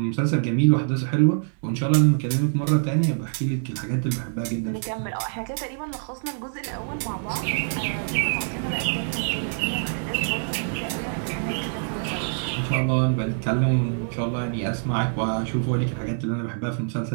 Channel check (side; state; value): left; silent; 62 dB below the other